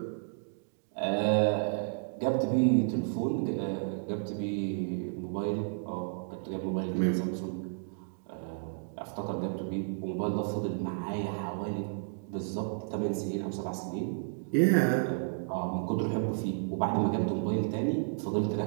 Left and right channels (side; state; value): left; silent; digital silence